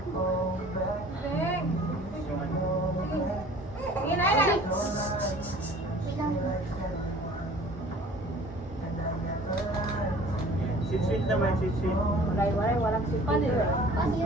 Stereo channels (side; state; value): both; normal; correlation 0.48